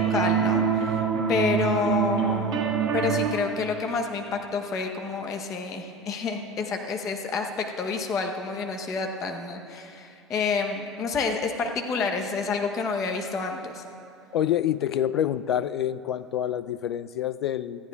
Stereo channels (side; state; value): both; normal; correlation 0.31